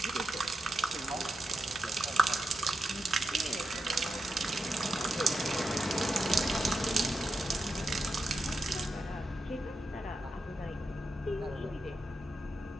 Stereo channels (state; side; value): normal; both; correlation 0.88